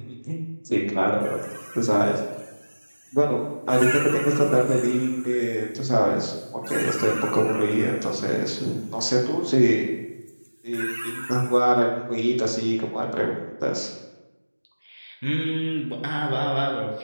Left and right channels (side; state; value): both; inverted; correlation -1.00